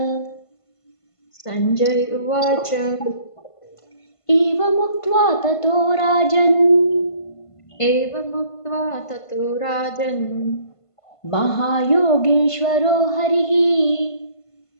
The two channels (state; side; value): late; right; 1.5 ms